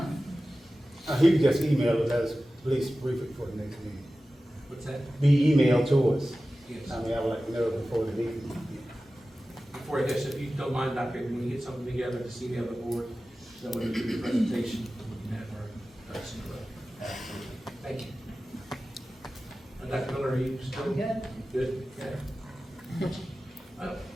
He can just email it as, please brief it for the next meeting. What's that? Be emailed to us. Yes. I mean, I would like to know before the meeting. Before I guess, if you don't mind, Dr. Ady, when you get something together, just email the board, so when we do the presentation, we can have our ducks in a row. Thank you. Dr. Miller, are you still? Good. Good, okay.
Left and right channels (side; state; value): both; normal; correlation 0.95